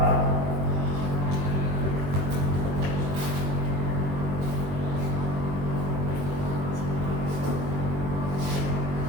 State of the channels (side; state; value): left; late; 21 ms